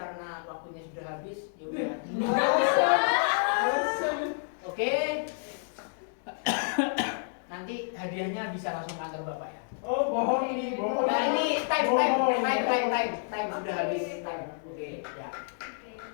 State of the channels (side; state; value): right; silent; digital silence